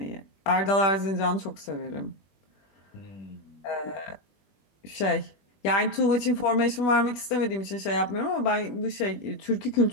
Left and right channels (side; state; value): right; late; 20 ms